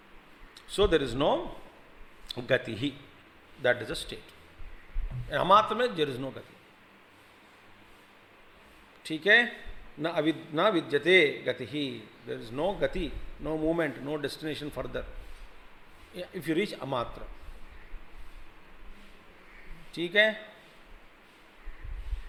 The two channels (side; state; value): both; identical; correlation 1.00